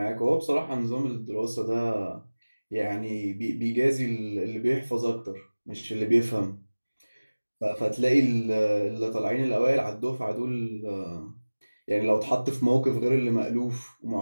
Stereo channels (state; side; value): inverted; both; correlation -1.00